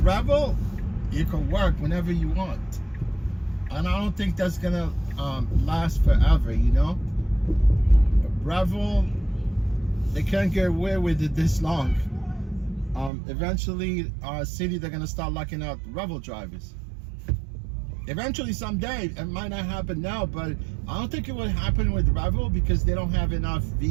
Revel, you can work whenever you want, and I don't think that's gonna last forever. Revel, they can't get away with it this long. Eventually, city, they're gonna start locking out Revel drivers. Eventually, someday. It might not happen now, but I don't think it would happen with Revel, because they don't have enough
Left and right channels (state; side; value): drops out; left; at 13.1 s